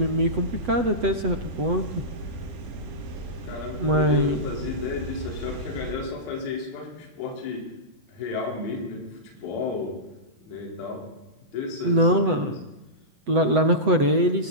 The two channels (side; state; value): left; late; 8.0 ms